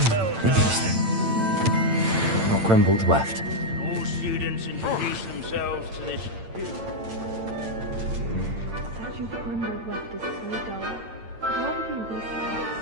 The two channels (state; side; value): late; left; 8.9 ms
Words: Interesting. Not Grimbold Weft. All students introduce themselves to this... Statue of Grimbold Weft is so dull. I'd rather be in these slides.